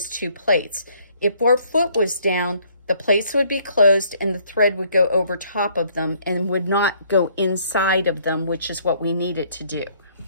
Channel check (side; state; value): both; inverted; correlation -0.63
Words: 2 plates. If our foot was down, the plates would be closed and the thread would go over top of them and would not go inside of them, which is what we need it to do.